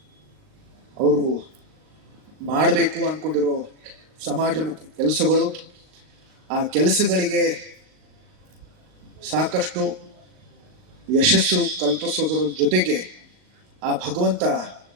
ಅವರು ಮಾಡಬೇಕು ಅಂದ್ಕೊಂಡಿರೋ ಸಮಾಜಮುಖಿ ಕೆಲಸಗಳು, ಆ ಕೆಲಸಗಳಿಗೆ ಸಾಕಷ್ಟು ಯಶಸ್ಸು ಕಲ್ಪಿಸೋದರ ಜೊತೆಗೆ ಆ ಭಗವಂತ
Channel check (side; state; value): left; late; 38 ms